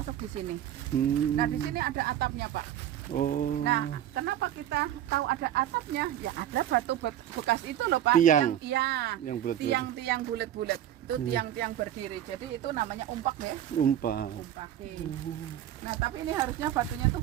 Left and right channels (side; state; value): left; quieter; 11.5 dB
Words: di sini. Nah, di sini ada atapnya, Pak. Oh. Nah, kenapa kita tahu ada atapnya? Ya ada batu bekas itu loh Pak. Tiang. Iya. Yang bulat-bulat. Tiang-tiang bulat-bulat. Itu tiang-tiang berdiri. Jadi itu namanya umpak ya. Umpak. Umpaki. Nah, tapi ini harusnya batunya tuh